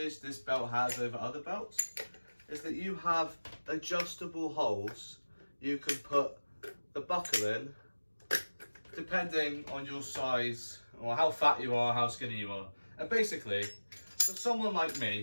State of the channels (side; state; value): both; inverted; correlation -1.00